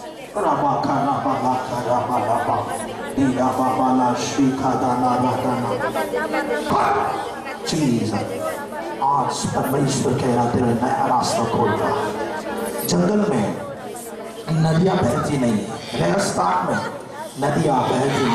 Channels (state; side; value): identical; both; correlation 1.00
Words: राबा का राबा दीरा बाबा ला शिखा दाना जीसस। आज परमेश्वर कह रहा तेरा नया रास्ता खोल रहा है। जंगल में नदियां बहती नहीं, रेगिस्तान में नदियां बहती